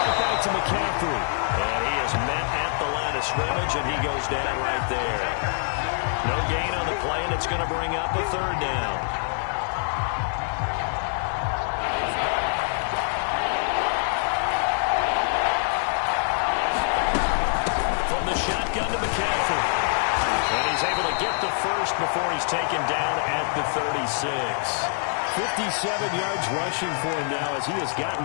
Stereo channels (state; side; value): silent; right; digital silence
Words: back to McCaffrey. And he is met at the line of scrimmage, and he goes down right there. No gain on the play, and it's going to bring up a third down. From the shotgun to McCaffrey. And he's able to get the first before he's taken down at the 36. 57 yards rushing for him now as he has gotten